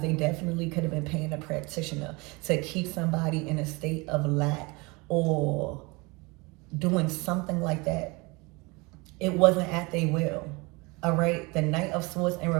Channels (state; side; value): quieter; left; 26.4 dB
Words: they definitely could have been paying a practitioner to keep somebody in a state of lack or doing something like that. It wasn't at their will, all right? The Knight of Swords in